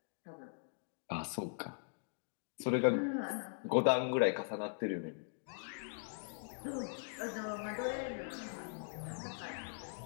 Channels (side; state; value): right; silent; digital silence